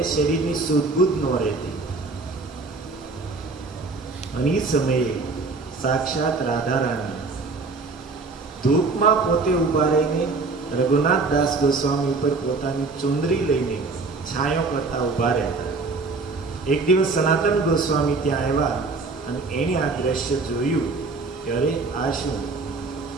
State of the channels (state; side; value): quieter; left; 3.8 dB